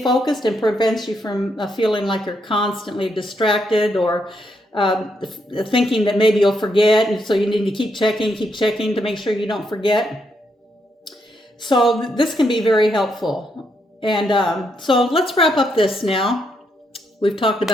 focused and prevents you from feeling like you're constantly distracted or thinking that maybe you'll forget, and so you need to keep checking to make sure you don't forget. So this can be very helpful. And so let's wrap up this now. We've talked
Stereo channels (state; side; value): normal; both; correlation 0.78